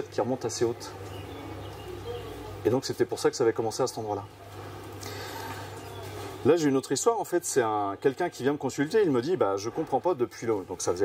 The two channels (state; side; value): identical; both; correlation 1.00